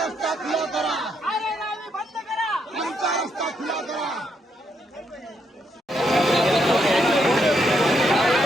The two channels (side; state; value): both; normal; correlation 0.77